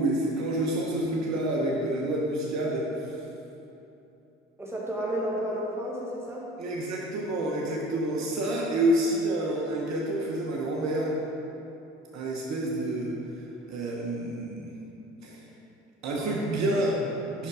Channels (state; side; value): normal; both; correlation 0.43